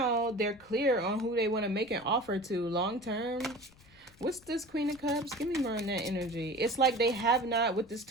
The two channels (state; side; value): noise; left; rumble, 26 dB below the sound